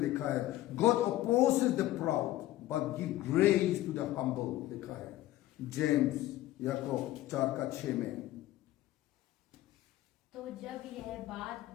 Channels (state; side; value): quieter; right; 15.4 dB